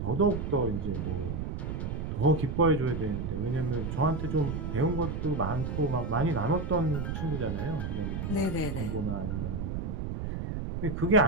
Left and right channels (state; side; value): noise; right; rumble, 4 dB below the sound